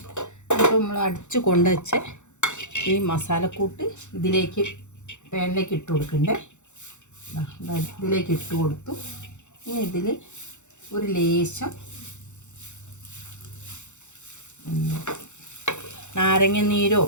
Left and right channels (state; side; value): late; right; 0.84 ms